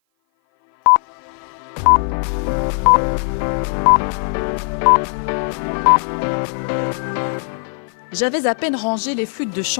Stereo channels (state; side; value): silent; right; 57 dB below the other